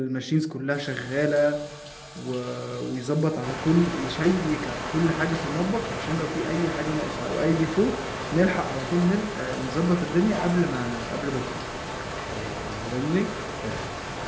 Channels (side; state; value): both; identical; correlation 1.00